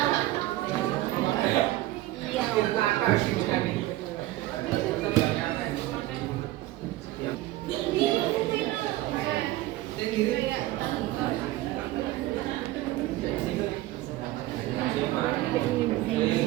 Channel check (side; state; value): left; quieter; 16.6 dB